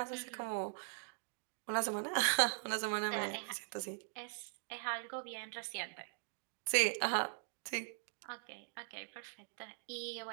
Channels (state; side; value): silent; left; digital silence